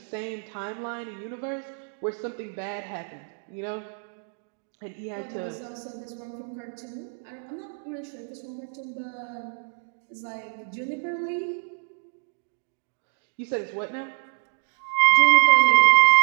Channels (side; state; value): left; silent; digital silence